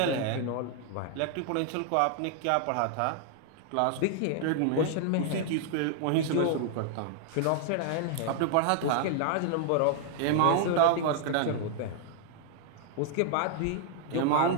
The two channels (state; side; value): different; both; correlation 0.00